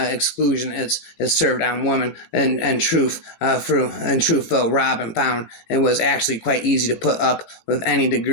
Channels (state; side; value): late; right; 18 ms